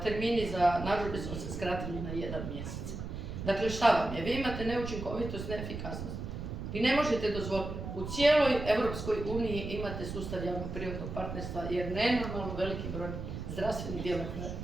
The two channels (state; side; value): noise; right; rumble, 6 dB below the sound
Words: za narudžbe su se skratili na 1 mjesec. Dakle, šta vam je? Vi imate neučinkovitost, neefikasnost. Vi ne možete dozvoliti. U cijeloj Europskoj uniji imate sustav javno-privatnog partnerstva jer nenormalno veliki broj zdravstvenih